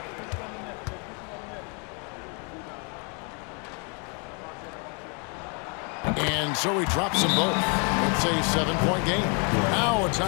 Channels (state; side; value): quieter; right; 36.0 dB